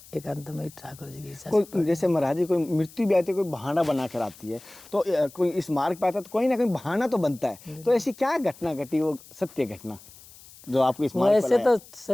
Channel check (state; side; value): noise; left; hiss, 21 dB below the sound